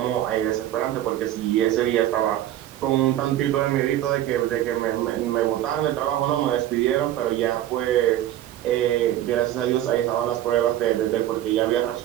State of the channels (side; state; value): left; quieter; 12.9 dB